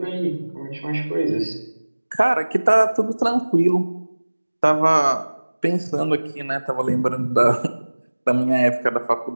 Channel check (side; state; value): both; inverted; correlation -1.00